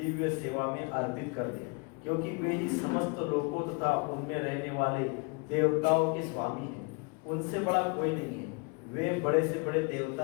सेवा में अर्पित कर दे, क्योंकि वे ही समस्त लोकों तथा उनमें रहने वाले देवताओं के स्वामी हैं। उनसे बड़ा कोई नहीं है। वे बड़े से बड़े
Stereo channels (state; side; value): quieter; right; 32.4 dB